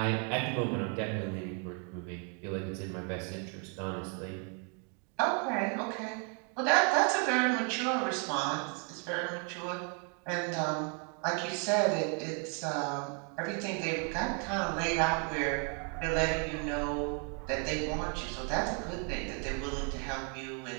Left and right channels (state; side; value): quieter; left; 38.6 dB